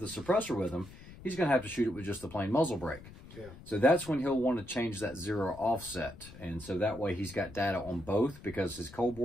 the suppressor with him. he's going to have to shoot it with just the plain muzzle brake. Yeah. So that's when he'll want to change that 0 offset. And so that way he's got data on both, because his cold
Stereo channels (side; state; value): left; noise; rumble, 17 dB below the sound